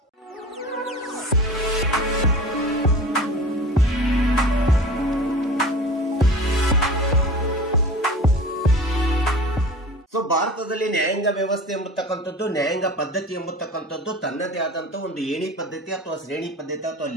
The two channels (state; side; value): normal; both; correlation 0.37